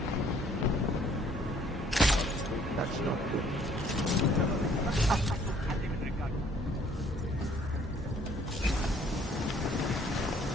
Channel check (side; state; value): both; normal; correlation 0.60